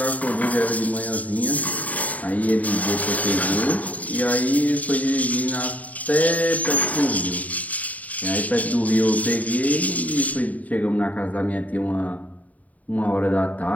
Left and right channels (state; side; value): late; right; 0.072 ms